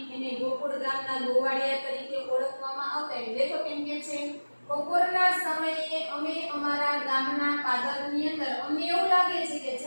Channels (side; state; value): both; inverted; correlation -1.00